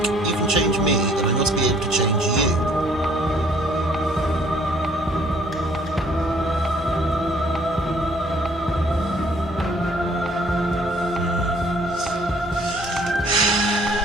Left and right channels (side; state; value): both; normal; correlation 0.60